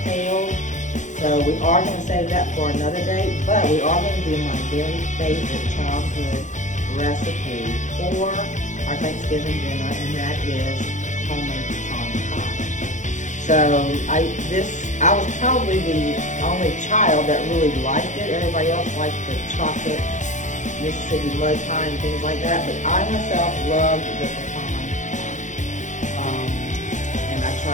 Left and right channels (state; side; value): late; right; 0.35 ms